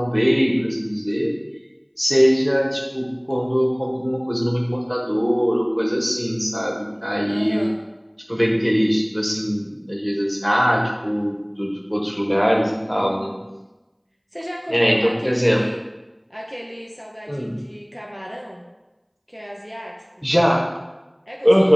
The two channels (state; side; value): identical; both; correlation 1.00